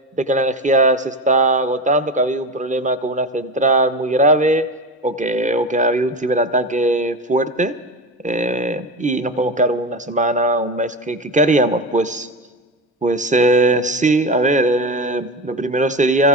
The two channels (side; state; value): both; normal; correlation 0.23